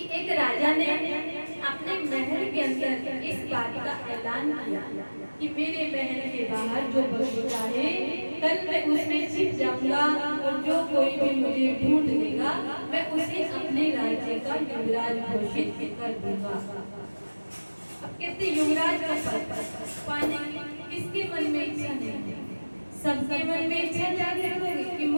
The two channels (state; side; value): inverted; both; correlation -1.00